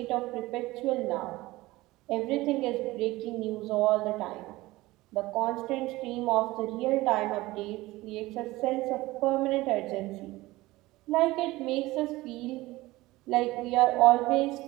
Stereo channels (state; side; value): quieter; left; 19.2 dB